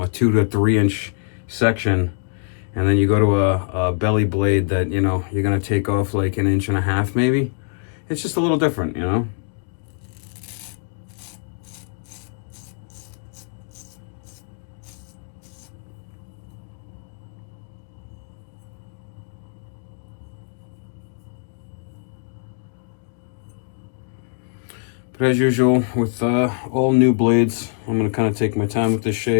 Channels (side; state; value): right; silent; digital silence